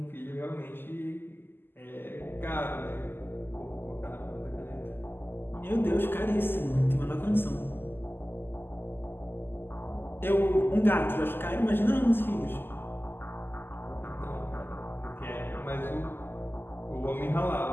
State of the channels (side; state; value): right; late; 0.10 ms